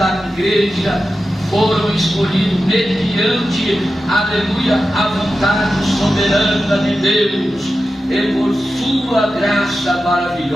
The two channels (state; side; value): normal; both; correlation 0.92